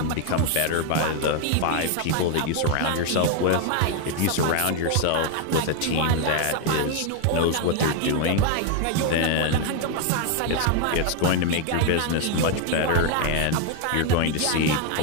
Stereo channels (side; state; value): both; different; correlation 0.01